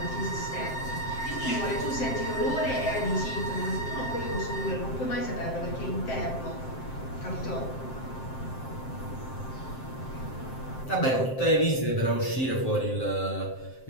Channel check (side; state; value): right; late; 7.6 ms